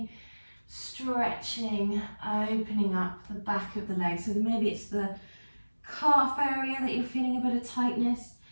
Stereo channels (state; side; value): inverted; both; correlation -1.00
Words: stretching, opening up the back of the legs. So maybe it's the calf area that you're feeling a bit of tightness.